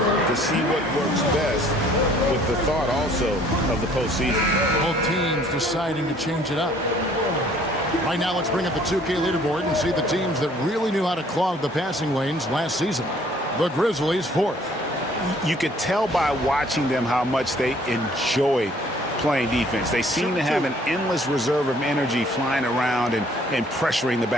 to see what works best, with the thought also of the postseason. Both teams deciding to change it up. Right now, let's bring up the 2K leaderboard and see the teams that really knew how to clog the passing lanes last season. The Grizzlies, 4th. You could tell by watching them how much they enjoyed playing defense. They seem to have an endless reserve of energy flying around and pressuring the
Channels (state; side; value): normal; both; correlation 0.58